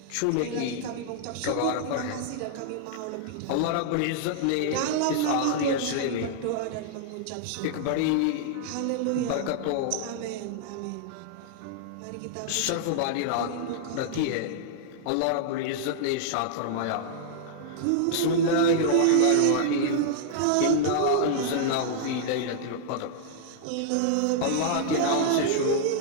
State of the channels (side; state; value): both; different; correlation -0.01